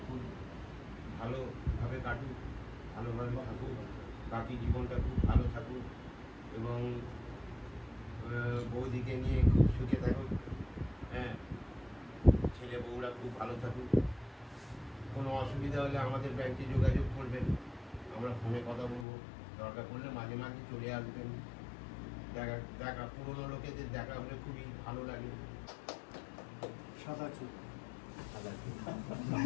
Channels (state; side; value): drops out; right; at 19.1 s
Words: খুব ভালোভাবে কাটুক, ভালোভাবে থাকুক, বাকি জীবনটা খুব ভালো থাকুক এবং বৌদিকে নিয়ে খুব সুখে থাকুক। হ্যাঁ ছেলে বউরা খুব ভালো থাকুক। কোনো অসুবিধা হলে আমাদের ব্যাংকে যোগাযোগ করবেন, আমরা ফোনে কথা বলবো। দরকার পড়লে মাঝে মাঝে চলে আসবেন। দেখা পুরোনো লোকেদের দেখা হলে খুবই ভালো লাগে। সাদা চুল